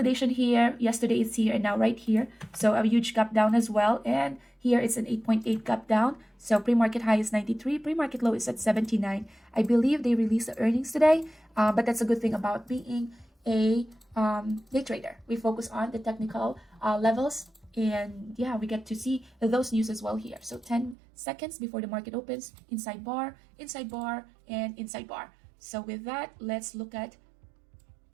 here. Yesterday it's here and now right here. So a huge gap down as well. And here it's an 8.8 gap down. So pre-market high is 93. Pre-market low is at 79. I believe they released the earnings today. But that's a good thing about being a day trader. We focus on the technical levels. And yeah, we get to see those news as well here. So 10 seconds before the market opens, inside bar, and inside bar. So with that, let's look at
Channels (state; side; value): drops out; left; at 21.0 s